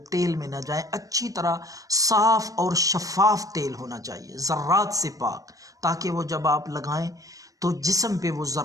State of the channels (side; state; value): left; late; 0.16 ms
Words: تیل میں نہ جائیں۔ اچھی طرح صاف اور شفاف تیل ہونا چاہیے، ذرات سے پاک، تاکہ وہ جب آپ لگائیں تو جسم پہ وہ